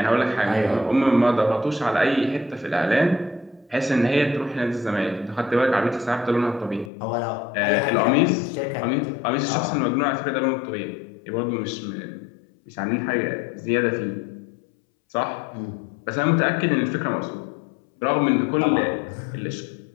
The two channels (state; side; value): drops out; right; at 6.9 s